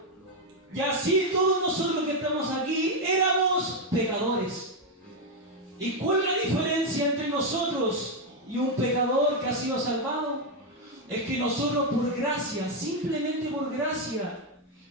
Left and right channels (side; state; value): both; normal; correlation 0.04